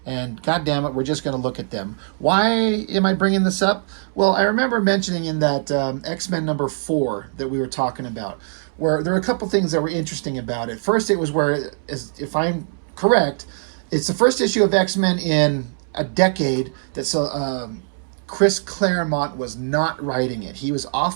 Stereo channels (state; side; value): silent; left; 65 dB below the other